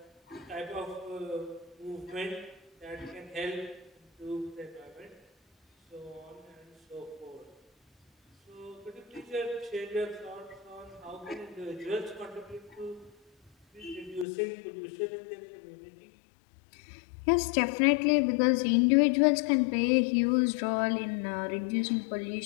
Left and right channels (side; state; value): right; drops out; at 14.2 s